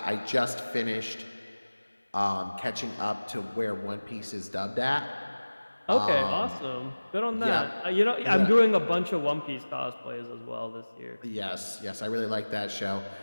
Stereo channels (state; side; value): inverted; both; correlation -1.00